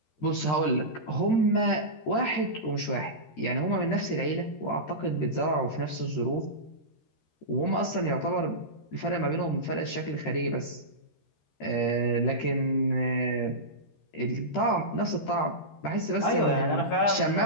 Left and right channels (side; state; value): right; late; 13 ms